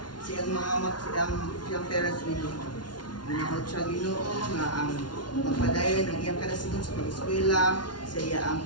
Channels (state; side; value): late; right; 0.70 ms